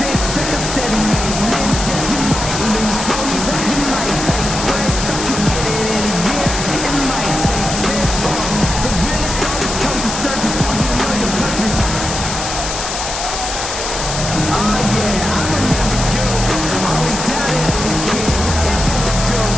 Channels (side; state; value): left; noise; hiss, 5 dB below the sound